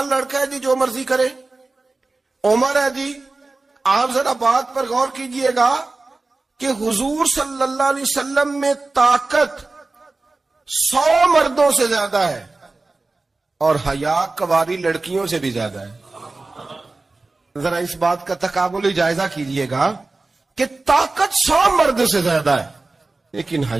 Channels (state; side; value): quieter; left; 3.4 dB